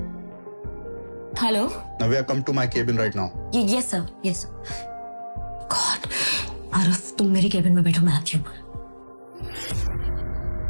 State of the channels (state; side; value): inverted; both; correlation -1.00